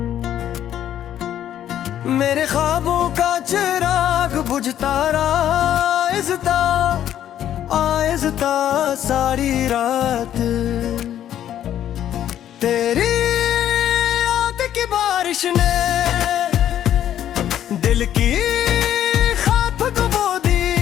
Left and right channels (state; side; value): quieter; right; 11.0 dB